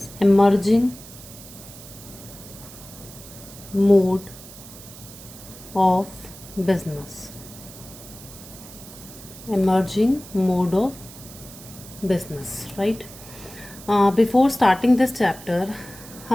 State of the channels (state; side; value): noise; right; hiss, 17 dB below the sound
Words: emerging mode of business. Emerging mode of business, right? Before starting this chapter,